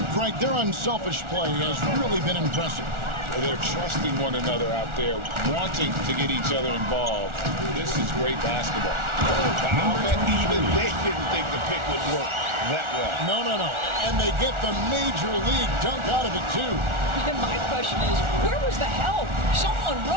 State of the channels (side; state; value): left; late; 1.4 ms